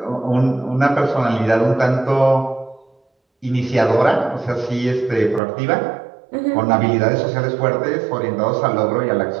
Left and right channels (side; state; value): left; drops out; at 5.4 s